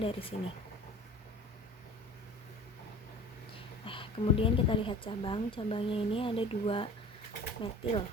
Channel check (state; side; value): normal; both; correlation 0.42